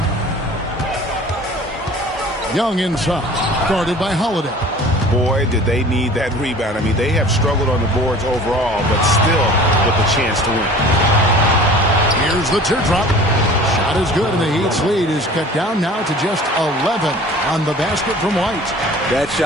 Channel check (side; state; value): both; normal; correlation 0.45